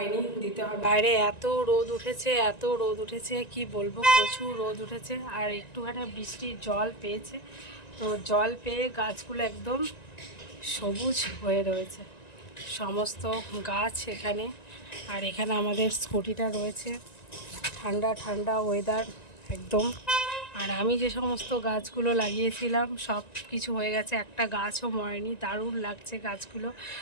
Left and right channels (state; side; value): late; right; 1.9 ms